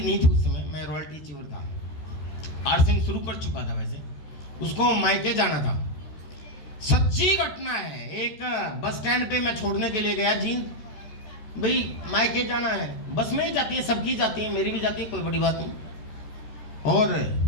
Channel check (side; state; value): right; late; 14 ms